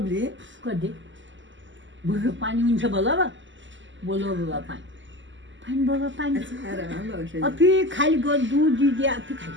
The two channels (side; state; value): left; late; 0.54 ms